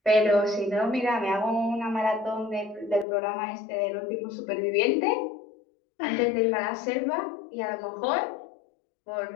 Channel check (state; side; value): drops out; right; at 3.1 s